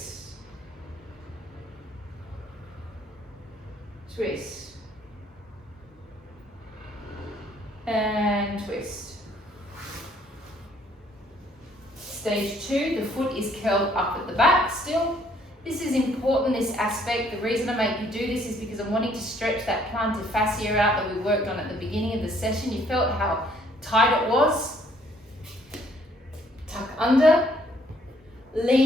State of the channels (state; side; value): normal; both; correlation 0.64